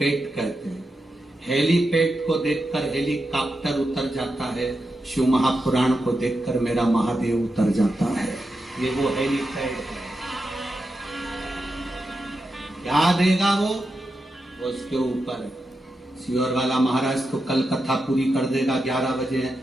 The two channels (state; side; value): normal; both; correlation 0.88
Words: कहते हैं। हेलीपैड को देखकर हेलीकॉप्टर उतर जाता है, शिव महापुराण को देखकर मेरा महादेव उतर जाता है। ये वो हेलीपैड है। क्या देगा वो उसके ऊपर है। सियोर वाला महाराज तो कल कथा पूरी कर देगा, 11 बजे